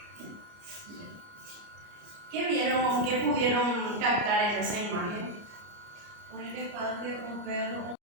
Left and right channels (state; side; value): late; left; 30 ms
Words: ¿Qué vieron, qué pudieron captar en esa imagen? Un elefante, un perro.